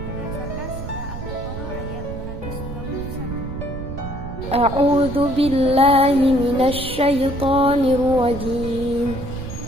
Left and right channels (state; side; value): noise; right; rumble, 9 dB below the sound